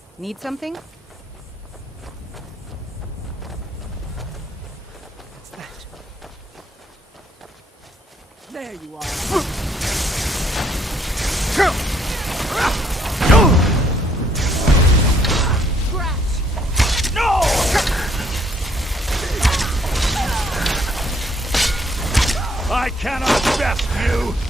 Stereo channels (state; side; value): normal; both; correlation 0.66